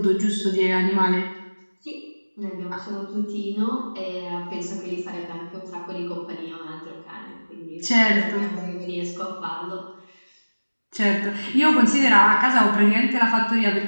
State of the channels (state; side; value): inverted; both; correlation -1.00